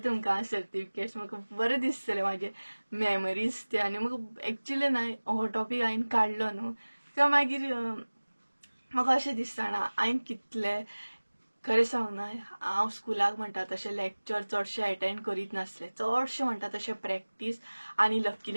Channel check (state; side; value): inverted; both; correlation -1.00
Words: तुमकां सर्टिफिकेट्स. म्हाका बरें दिसतलें म्हाजे मेमरीज ते. आनी म्हाका एक्चुअली न्हय हो टॉपीक हांवें काडलो न्हू तें मागीर म्हाका अशें दिसता ना हांवें कितलें खरें सांग न्हय हांव स्कुलाक म्हणटा तशें लेक्चर चडशें अटेंड करीत नासलें. चडशें म्हणटा तशें प्रॅक्टीस. आनी